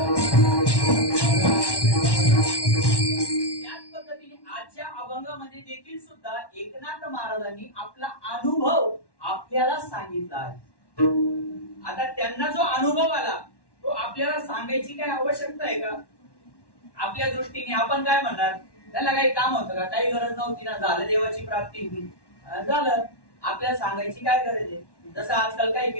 त्याच पद्धतीने आजच्या अभंगामध्ये देखील सुद्धा एकनाथ महाराजांनी आपला अनुभव आपल्याला सांगितला आहे. आता त्यांना जो अनुभव आला तो आपल्याला सांगायची काय आवश्यकता आहे का? आपल्या दृष्टीने आपण काय म्हणणार, त्याला काही काम होतं का, काही गरज नव्हती ना, झालं देवाची प्राप्ती झालं, आपल्याला सांगायची काय गरज आहे? जसं आजकाल काही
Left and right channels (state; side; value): late; right; 1.1 ms